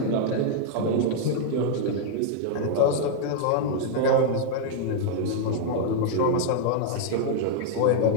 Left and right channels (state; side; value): different; both; correlation -0.01